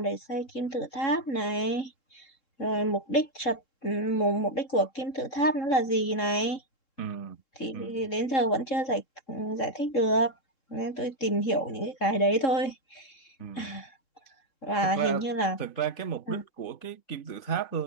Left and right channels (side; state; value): right; late; 3.7 ms